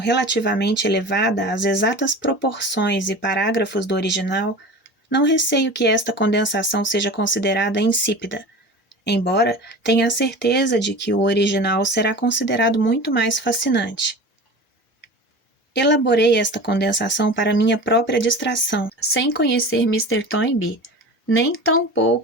elevada as exatas proporções e parágrafos do original, não receio que esta condensação seja considerada insípida, embora tenha a certeza de que o original será considerado muito mais fascinante. Elaborei esta condensação para minha própria distração, sem conhecer Mr. Toynbee, nem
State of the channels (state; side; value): normal; both; correlation 0.35